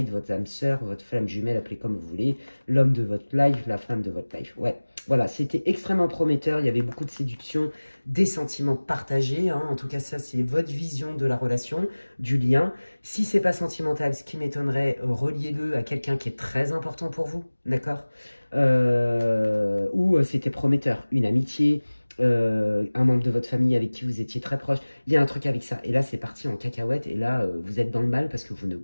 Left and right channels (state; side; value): inverted; both; correlation -1.00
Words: votre âme sœur, votre flamme jumelle, appelez comme vous voulez, l'homme de votre life, la femme de votre life, ouais. Voilà, c'était extrêmement prometteur, il y avait beaucoup de séduction, des sentiments partagés, hein, en tout cas ça c'est votre vision de la relation, du lien. Si c'est pas sentimental, ce qui m'étonnerait, reliez-le à quelqu'un qui est très important pour vous, d'accord? Ou c'était prometteur, une amitié, un membre de votre famille avec qui vous étiez très proche, il y a un truc avec ça. Et là c'est parti en cacahuète, et là vous êtes dans le mal parce que vous ne